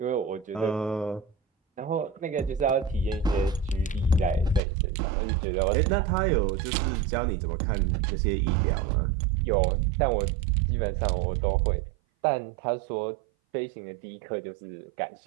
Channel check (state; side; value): drops out; left; at 4.6 s